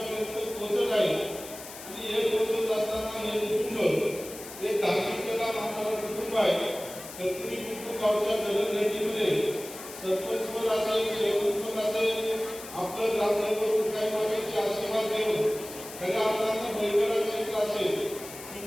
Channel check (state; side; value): noise; left; hiss, 13 dB below the sound